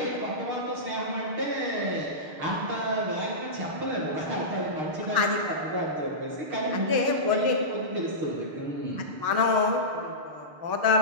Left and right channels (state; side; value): late; left; 6.2 ms